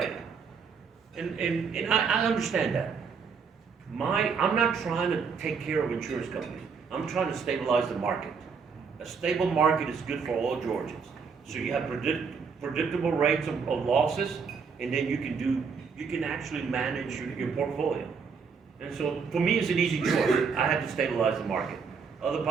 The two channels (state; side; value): quieter; left; 5.7 dB